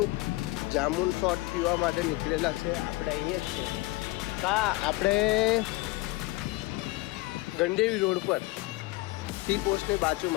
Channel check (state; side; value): quieter; right; 21.3 dB